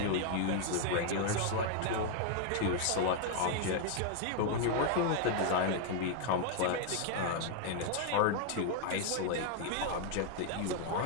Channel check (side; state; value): both; different; correlation 0.00